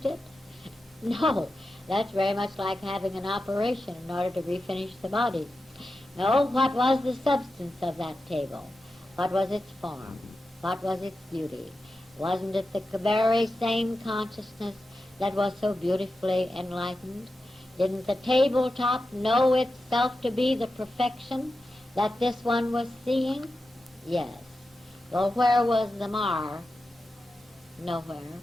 it? No. That's very much like having an operation in order to refinish the body. No, what was the substance of that table? What was its form? What was its beauty? Wasn't it the very same consciousness that was so beautifully enlightened? Didn't the tabletop know itself to be the perfection that this one was seeing? Yes. Well, where was the mar? Nowhere.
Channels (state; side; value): normal; both; correlation 0.91